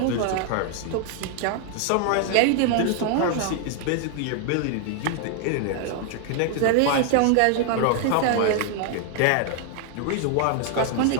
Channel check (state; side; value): different; both; correlation 0.00